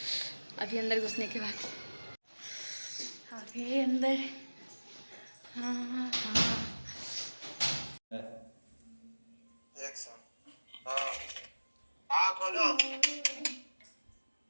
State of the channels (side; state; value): both; inverted; correlation -1.00